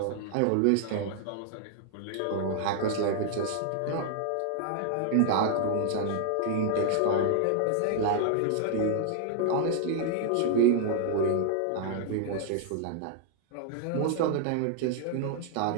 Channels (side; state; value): both; different; correlation -0.01